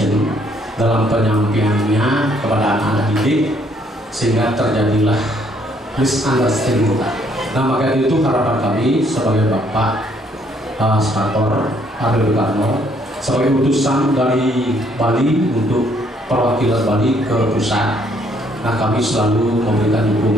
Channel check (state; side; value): normal; both; correlation 0.67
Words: dalam penyampaiannya kepada anak-anak didik, sehingga terjadilah misunderstanding. Nah, maka itu harapan kami sebagai Bapak Senator Aryo Karno sebagai utusan dari Bali untuk perwakilan Bali ke pusat. Nah, kami selalu memberikan